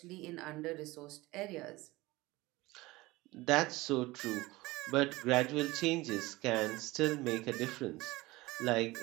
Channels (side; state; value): left; quieter; 20.4 dB